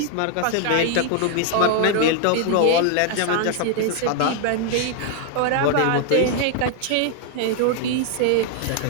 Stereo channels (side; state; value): both; different; correlation 0.00